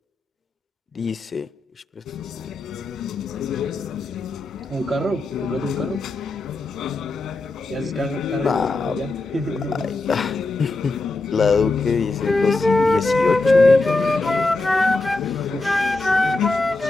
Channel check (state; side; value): quieter; right; 3.1 dB